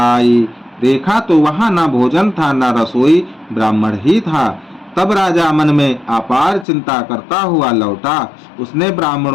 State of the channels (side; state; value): right; drops out; at 6.7 s